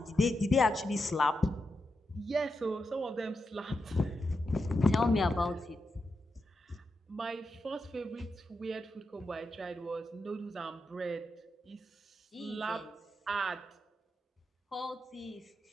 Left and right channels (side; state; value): both; normal; correlation 0.87